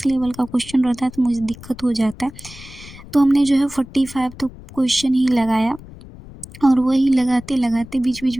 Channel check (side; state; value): left; noise; rumble, 18 dB below the sound